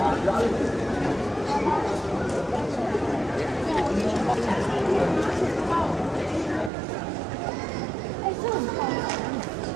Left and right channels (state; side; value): drops out; left; at 6.7 s